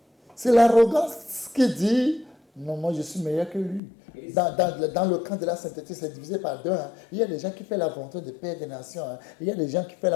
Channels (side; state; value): right; drops out; at 3.8 s